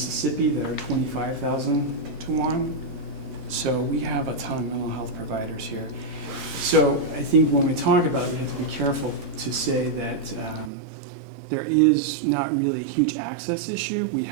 that are 25,000 to 1. So we have a ton of mental health providers here. So I think when we talk about it, we have to be careful to say that there is not really a huge access issue. We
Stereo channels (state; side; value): drops out; left; at 10.7 s